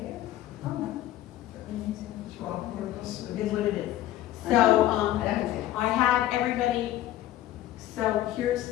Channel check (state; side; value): quieter; right; 13.8 dB